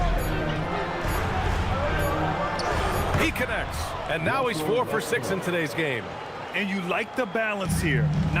He connects. And now he's 4 for 6 in today's game. And you like the balance here,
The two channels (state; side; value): identical; both; correlation 1.00